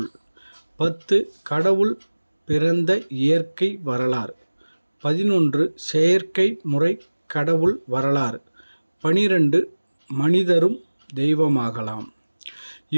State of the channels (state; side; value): inverted; both; correlation -1.00